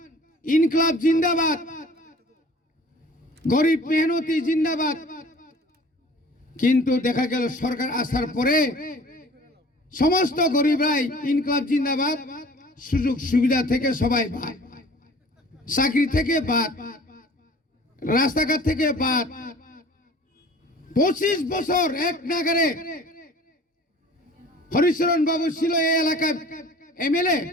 ইনকলাব জিন্দাবাদ, গরিব মেহনতি জিন্দাবাদ। কিন্তু দেখা গেল সরকার আসার পরে সমস্ত গরিবরাই ইনকলাব জিন্দাবাদ, সুযোগ সুবিধা থেকে সবাই বাদ, চাকরি থেকে বাদ, রাস্তাঘাট থেকে বাদ। 25 বছর এক নাগারে হরিচরণ বাবু ছিল এই এলাকার এমএলএ,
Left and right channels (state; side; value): normal; both; correlation 0.47